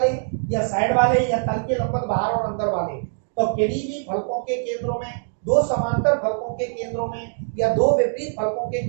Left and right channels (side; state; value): left; silent; digital silence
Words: या साइड वाले या तल के लंबवत बाहर और अंदर वाले। तो किन्हीं भी फलकों के केंद्रों में, 2 समांतर फलकों के केंद्रों में या 2 विपरीत फलकों के